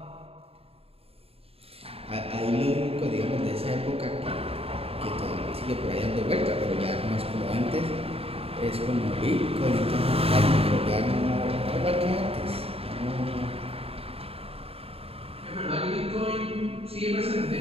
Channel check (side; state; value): left; late; 0.28 ms